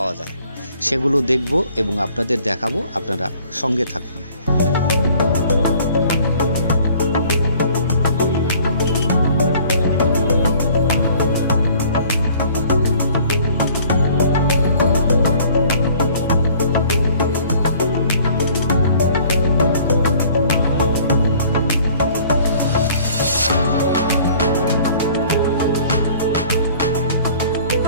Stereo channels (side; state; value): both; inverted; correlation -0.54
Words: যায়, সেগুলো দেখব এবং আপনাদের দেখাবো। আপনারা সঙ্গে থাকুন।